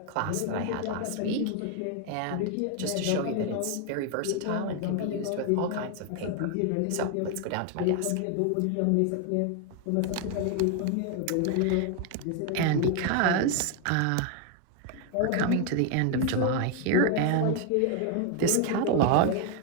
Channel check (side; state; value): both; different; correlation 0.00